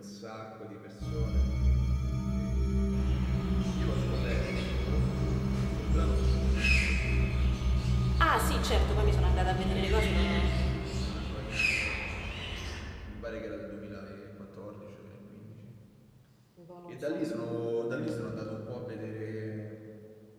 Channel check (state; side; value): identical; both; correlation 1.00